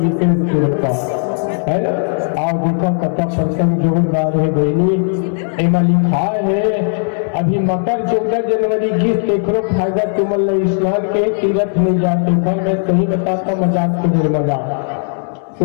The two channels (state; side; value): silent; right; 69 dB below the other